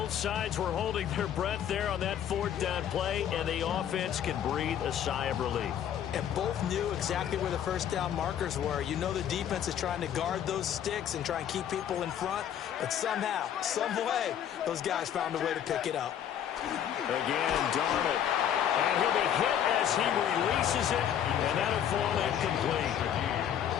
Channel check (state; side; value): quieter; right; 9.7 dB